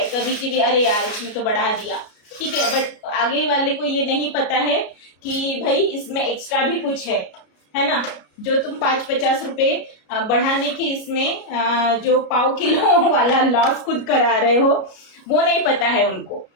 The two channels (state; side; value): late; right; 33 ms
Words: कभी कभी, अरे यार इसमें तो बढ़ा दिया, ठीक है, बट आगे वाले को ये नहीं पता है कि भाई इसमें एक्स्ट्रा भी कुछ है ना। जो तुम 5-50 रुपए बढ़ाने के इसमें जो पाव किलो वाला लॉस खुद करा रहे हो, वो नहीं पता है उनको।